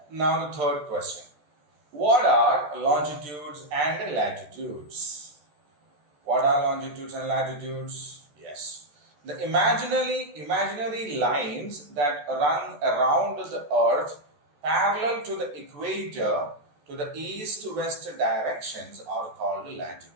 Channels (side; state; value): left; late; 14 ms